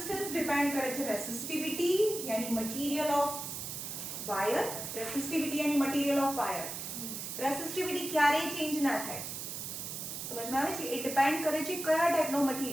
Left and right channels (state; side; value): noise; right; hiss, 6 dB below the sound